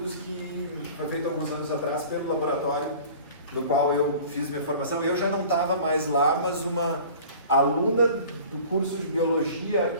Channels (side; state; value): both; inverted; correlation -0.44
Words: que foi feito alguns anos atrás pelo laboratório no qual eu fiz minha formação. Eu já não estava mais lá, mas uma aluna do curso de biologia